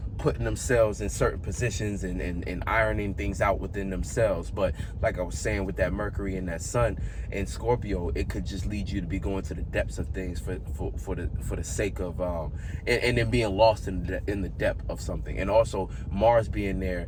putting themselves in certain positions and ironing things out within themselves. But like I was saying, with that Mercury and that Sun in Scorpio, it could just lead you to be going to the depths of things for the sake of and then being lost in the depth of something. And also Mars being there,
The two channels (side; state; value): both; identical; correlation 1.00